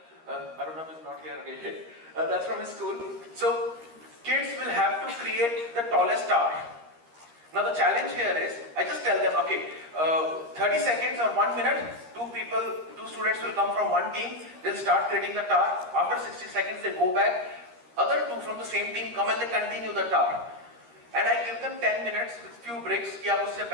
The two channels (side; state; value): left; late; 13 ms